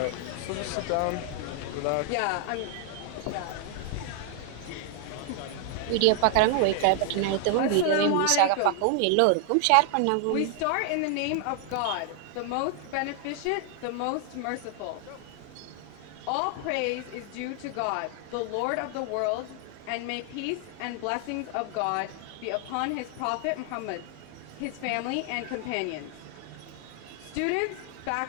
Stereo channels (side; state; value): both; different; correlation 0.00